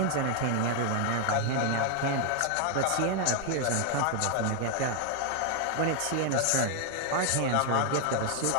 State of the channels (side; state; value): both; different; correlation 0.00